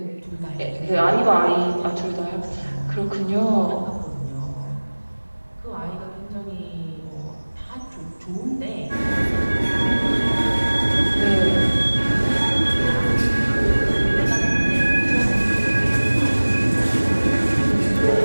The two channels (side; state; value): both; inverted; correlation -1.00